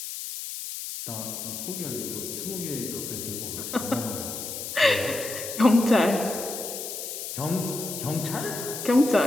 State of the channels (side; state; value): left; noise; hiss, 7 dB below the sound